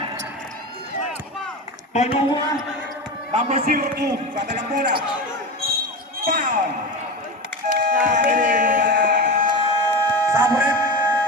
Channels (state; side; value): normal; both; correlation 0.24